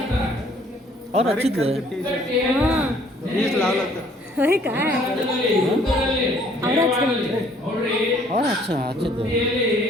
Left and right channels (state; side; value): normal; both; correlation 0.60